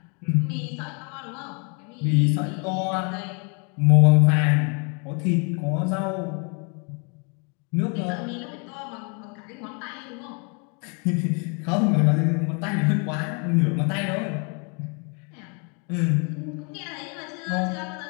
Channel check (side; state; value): right; quieter; 36.0 dB